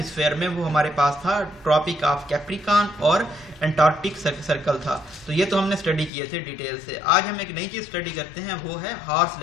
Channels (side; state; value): right; drops out; at 6.1 s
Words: में, वो हमारे पास था ट्रॉपिक ऑफ कैप्रिकॉन और एंटार्क्टिक सर्कल था। तो ये तो हमने स्टडी किए थे डिटेल से। आज हम एक नई चीज़ स्टडी करते हैं, वो है हॉर्स